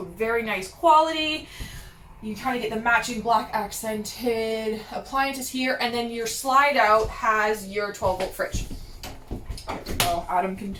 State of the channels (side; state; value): both; identical; correlation 1.00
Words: very nice quality. You kind of get the matching black accented appliances here, and then your slide out has your 12-volt fridge. There we go. Adam can